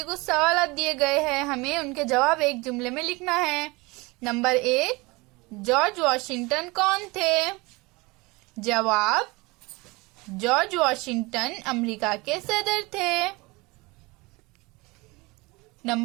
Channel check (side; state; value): left; quieter; 24.4 dB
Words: कुछ सवाल दिए गए हैं, हमें उनके जवाब एक जुमले में लिखना है। नंबर 1, जॉर्ज वॉशिंगटन कौन थे? जवाब, जॉर्ज वॉशिंगटन अमेरिका के सदर थे।